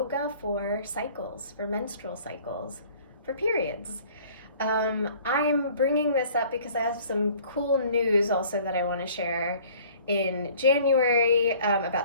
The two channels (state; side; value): inverted; both; correlation -0.52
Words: for cycles, for menstrual cycles, for periods. I'm bringing this up because I have some cool news also that I want to share in January